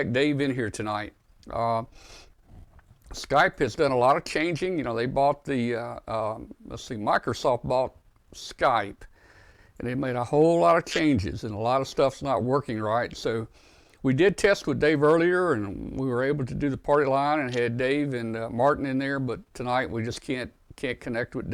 Dave in here tonight. Skype has done a lot of changing. You know, they bought Microsoft bought Skype, and they made a whole lot of changes, and a lot of stuff's not working right. So we did test with Dave earlier, and we were able to do the party line and had Dave and Martin in there, but tonight we just can't connect with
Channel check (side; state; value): both; identical; correlation 1.00